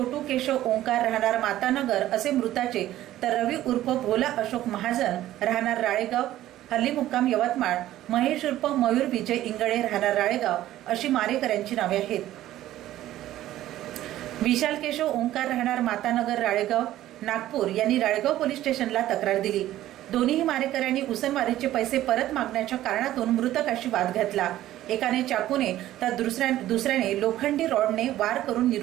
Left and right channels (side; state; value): left; quieter; 14.0 dB